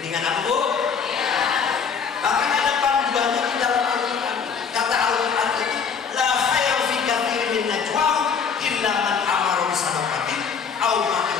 apa, Bu? Bahkan ada panduannya di dalam Al-Quran. Kata Al-Quran itu, la khairu fi katsirin min najwahum illa man amara bi sadaqatin aw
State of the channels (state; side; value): quieter; right; 6.3 dB